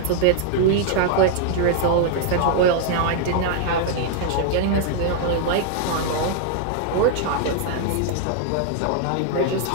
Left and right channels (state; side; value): different; both; correlation 0.00